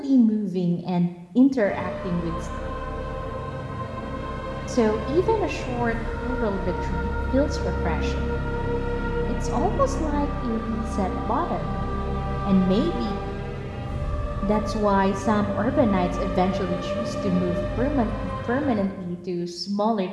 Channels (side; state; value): both; identical; correlation 1.00